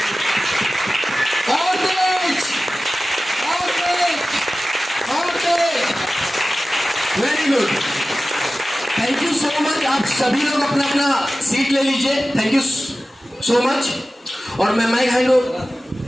और तेज और तेज और तेज। Very good, thank you so much. आप सभी लोग अपना अपना सीट ले लीजिए। Thank you so much. और मैं माइक हैंड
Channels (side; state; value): both; normal; correlation 0.95